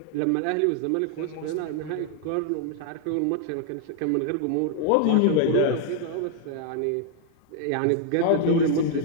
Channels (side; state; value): both; different; correlation 0.00